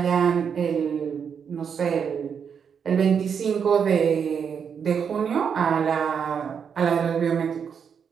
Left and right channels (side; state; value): left; quieter; 7.0 dB